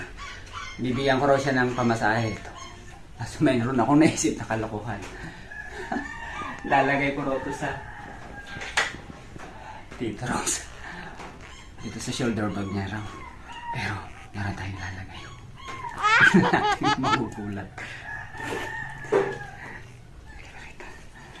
bibigyan ko raw siya ng pamasahe. Tapos mayroon akong naisip na kalokohan. Lalagay ko raw ito sa dito raw dito sa shoulder bag niya raw. Pero meron tayong lalagay. Tignan natin magugulat.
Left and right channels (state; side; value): identical; both; correlation 1.00